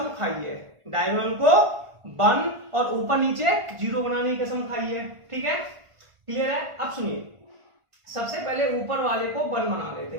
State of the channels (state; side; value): late; left; 1.5 ms